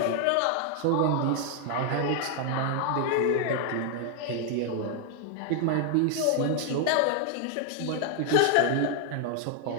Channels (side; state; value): both; different; correlation 0.00